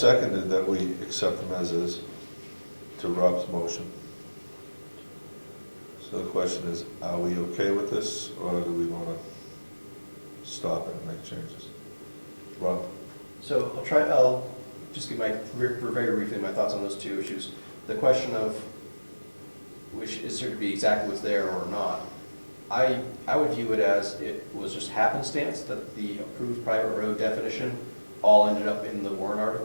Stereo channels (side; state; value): both; inverted; correlation -1.00